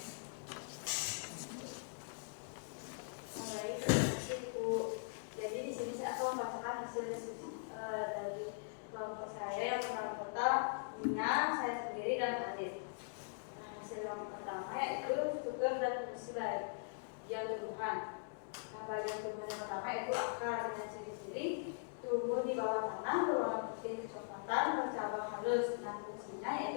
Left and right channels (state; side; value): silent; right; digital silence